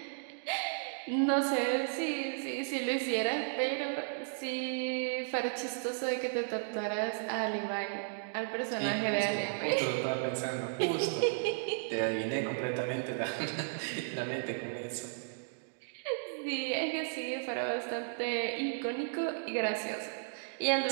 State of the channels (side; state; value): left; silent; digital silence